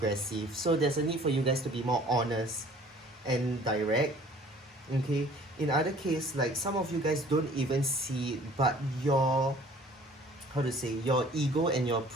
So there's a need for you guys to be more honest and direct. Okay, in other case, like some of you guys don't even see it, but your ego and your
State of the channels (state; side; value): normal; both; correlation 0.52